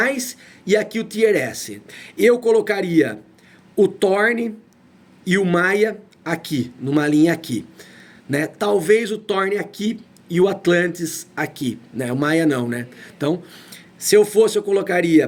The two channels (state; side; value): identical; both; correlation 1.00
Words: e aqui o tier S. Eu colocaria o Thorne e o Maya aqui, numa linha aqui, né? Talvez o Thorne aqui e o Atlantis aqui, né? O Maya não, né? Então, se eu fosse, eu colocaria